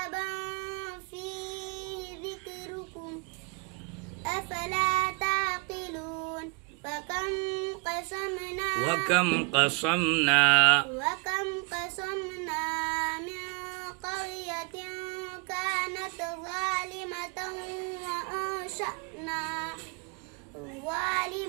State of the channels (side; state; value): left; quieter; 33.5 dB